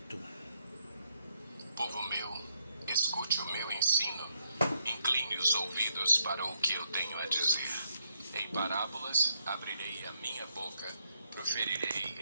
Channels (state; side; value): inverted; both; correlation -0.76